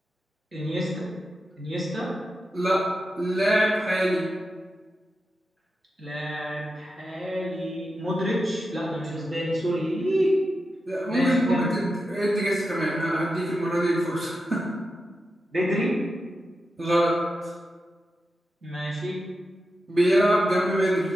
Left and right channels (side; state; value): both; normal; correlation 0.89